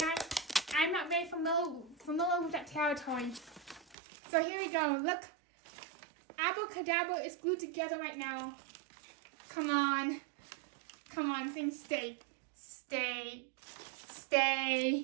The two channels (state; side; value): drops out; left; at 4.0 s